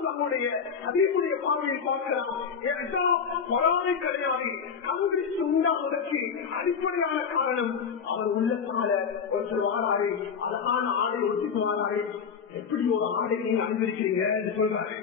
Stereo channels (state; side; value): quieter; right; 6.4 dB